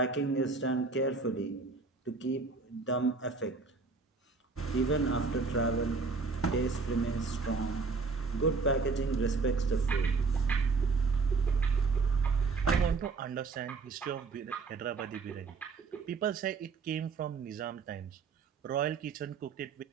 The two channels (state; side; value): quieter; left; 4.5 dB